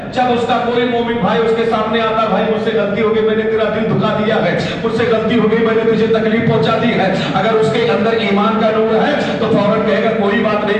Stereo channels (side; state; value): both; identical; correlation 1.00